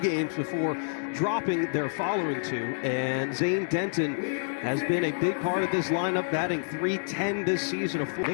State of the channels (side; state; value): right; silent; digital silence